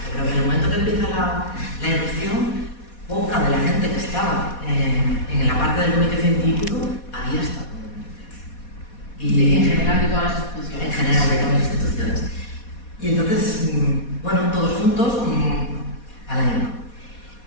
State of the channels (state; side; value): late; right; 4.2 ms